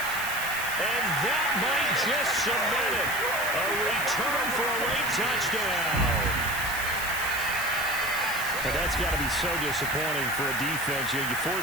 And that might just cement it. A return for a late touchdown. But that's got to be so disappointing for a defense. You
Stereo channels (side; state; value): right; noise; hiss, 8 dB below the sound